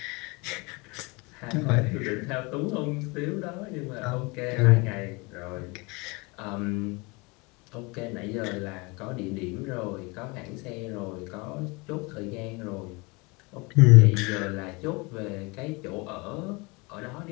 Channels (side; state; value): right; quieter; 27.1 dB